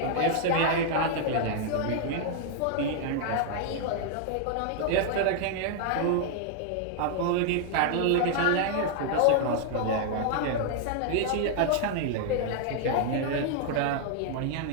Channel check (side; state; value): both; different; correlation 0.00